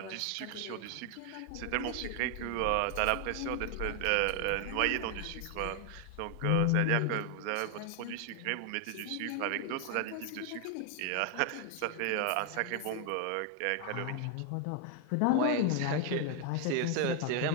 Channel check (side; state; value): both; different; correlation 0.00